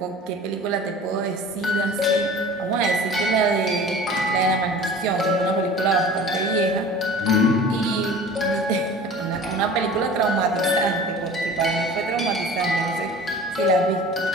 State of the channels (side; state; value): both; normal; correlation 0.42